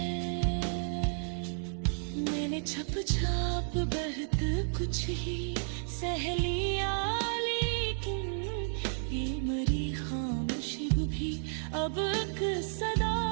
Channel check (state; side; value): silent; left; digital silence